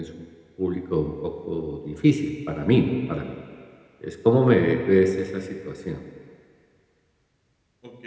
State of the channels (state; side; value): identical; both; correlation 1.00